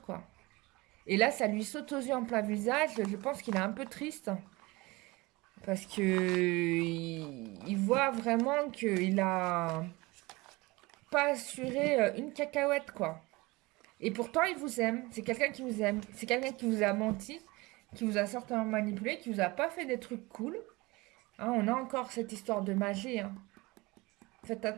quoi. Et là, ça lui saute aux yeux en plein visage, je pense qu'il est un peu triste, parce que il voit vraiment qu'il a pas assuré une cacahuète, quoi. Et pourtant, il vous aime, c'est quelqu'un qui vous aime, c'est quelqu'un qui vous a menti, qui vous a certainement manipulé, qui vous a pas fait des trucs cool. Hein, on a encore cette histoire de magie, hein. Faites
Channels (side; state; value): left; quieter; 22.9 dB